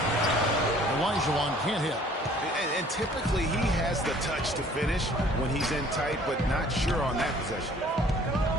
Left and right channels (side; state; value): both; normal; correlation 0.55